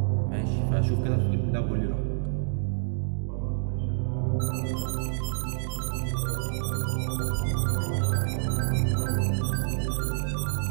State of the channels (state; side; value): silent; left; digital silence